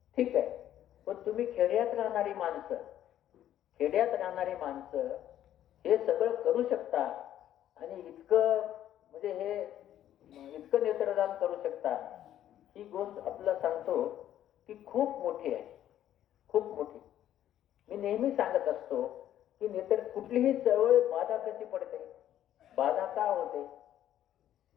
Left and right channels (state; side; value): quieter; right; 11.7 dB